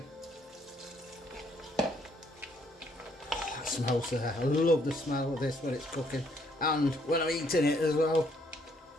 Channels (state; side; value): normal; both; correlation 0.68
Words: That smells there. I love the smell of this when it's cooking, and when I'm eating it as well.